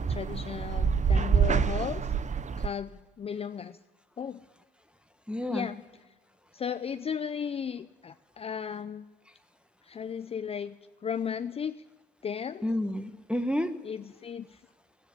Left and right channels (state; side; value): normal; both; correlation 0.64